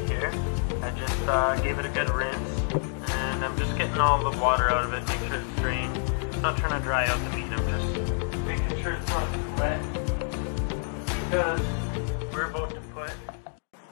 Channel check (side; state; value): right; silent; 59 dB below the other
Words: here. I just gave it a good rinse. And I'm just getting all the water out of it, make sure it's drained. I'm not trying to dry out the meat, I'm just making sure it's not too wet. Because we're about to put